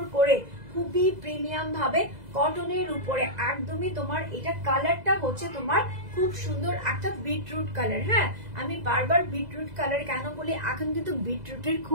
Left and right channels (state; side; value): late; left; 2.0 ms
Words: করে খুবই প্রিমিয়াম ভাবে কটনের উপরে, একদমই তোমার এটা কালারটা হচ্ছে তোমার খুব সুন্দর একটা বিটরুট কালার। হ্যাঁ, আমি বারবার বিটরুট কালার কেন বলি, এখন কিন্তু বিটরুটের